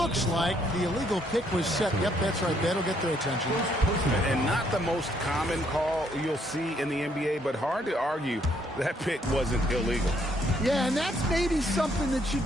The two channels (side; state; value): both; normal; correlation 0.70